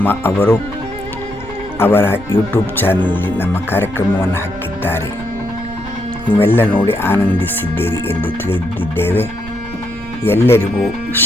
ಅವರು ಅವರ ಯೂಟ್ಯೂಬ್ ಚಾನಲಲ್ಲಿ ನಮ್ಮ ಕಾರ್ಯಕ್ರಮವನ್ನು ಹಾಕಿದ್ದಾರೆ. ನೀವೆಲ್ಲ ನೋಡಿ ಆನಂದಿಸಿದ್ದೀರಿ ಎಂದು ತಿಳಿದಿದ್ದೇವೆ. ಎಲ್ಲರಿಗೂ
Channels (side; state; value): right; noise; rumble, 16 dB below the sound